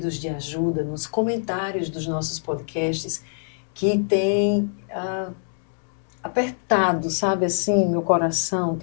de ajuda nos comentários dos nossos podcasts que tem apertado, sabe assim, meu coração,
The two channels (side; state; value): right; silent; 62 dB below the other